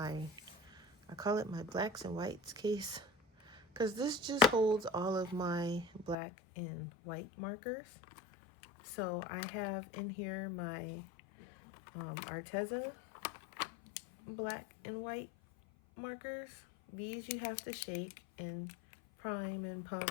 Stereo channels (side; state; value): right; drops out; at 6.2 s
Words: call it my blacks and whites case, because this just holds all of my black and white markers. So I have in here my Arteza black and white markers. These you have to shake and prime and